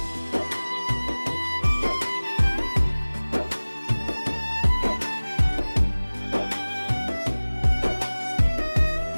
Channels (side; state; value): both; inverted; correlation -1.00